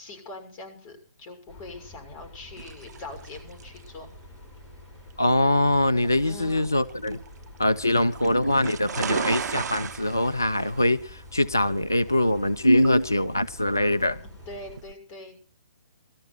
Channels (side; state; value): both; inverted; correlation -0.87